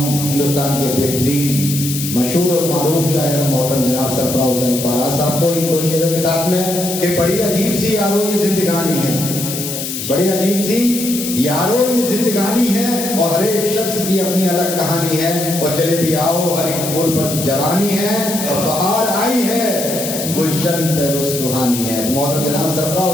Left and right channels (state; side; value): noise; left; hiss, 5 dB below the sound